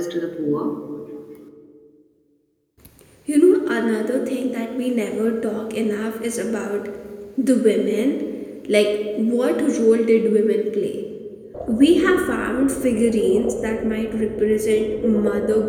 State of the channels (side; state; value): both; identical; correlation 1.00